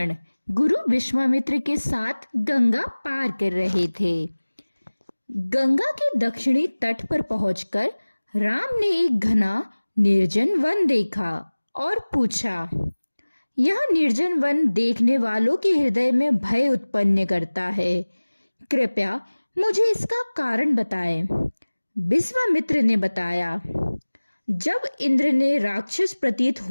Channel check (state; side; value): inverted; both; correlation -1.00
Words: गुरु विश्वामित्र के साथ गंगा पार कर रहे थे। गंगा के दक्षिणी तट पर पहुंचकर राम ने एक घना निर्जन वन देखा और पूछा, यह निर्जन वन देखने वालों के हृदय में भय उत्पन्न करता है। कृपया मुझे इसका कारण बताएं। विश्वामित्र ने बताया, जब इंद्र ने राक्षस प्रतीत